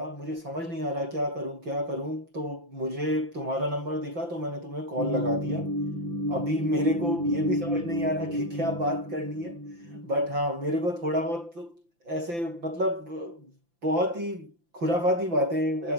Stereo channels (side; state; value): left; late; 5.9 ms